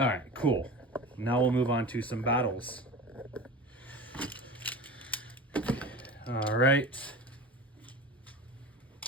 right, cool. Now we'll move on to some battles. All right.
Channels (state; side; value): normal; both; correlation 0.33